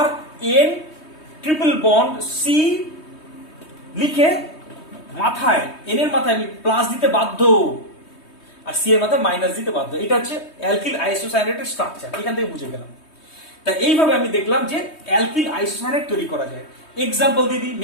RN ট্রিপল বন্ড C লিখে মাথায়, N এর মাথায় আমি প্লাস দিতে বাধ্য, আর C এর মাথায় মাইনাস দিতে বাধ্য। এটা হচ্ছে অ্যালকিল আইসোসায়ানাইডের স্ট্রাকচার, এখান থেকে বুঝে গেলাম। তাই এইভাবে আমি দেখলাম যে অ্যালকিল আইসোসায়ানাইড তৈরি করা যায়। এক্সাম্পল দিদি,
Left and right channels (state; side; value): late; right; 3.2 ms